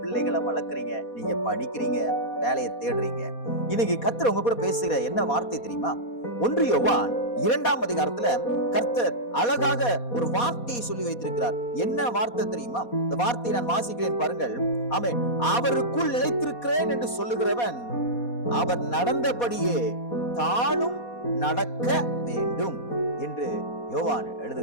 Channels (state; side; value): late; right; 4.2 ms